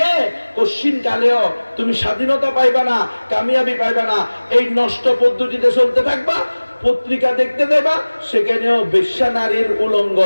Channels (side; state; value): both; inverted; correlation -1.00